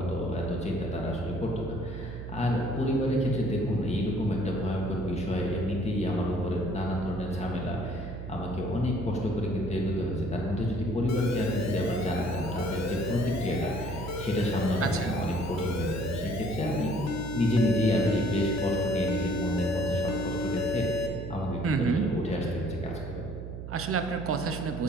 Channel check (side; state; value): right; noise; hum, 9 dB below the sound